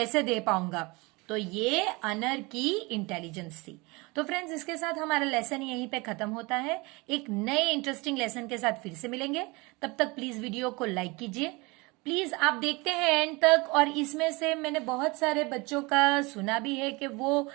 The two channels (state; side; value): quieter; left; 25.6 dB